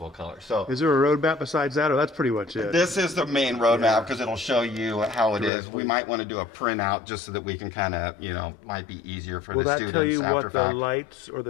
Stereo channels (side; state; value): right; drops out; at 5.5 s